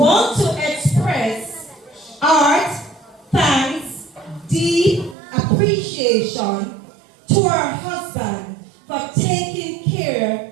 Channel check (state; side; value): drops out; left; at 5.2 s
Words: to express our thanks, deep appreciation to her husband for taking care